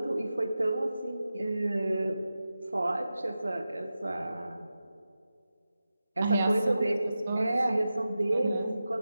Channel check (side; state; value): both; inverted; correlation -0.93